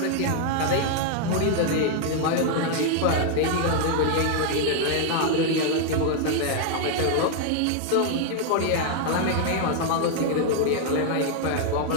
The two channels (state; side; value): different; both; correlation 0.00